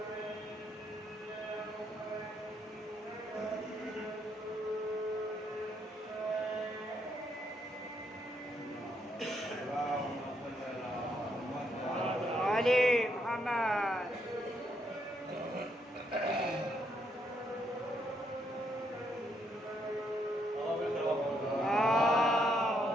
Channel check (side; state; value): both; normal; correlation 0.75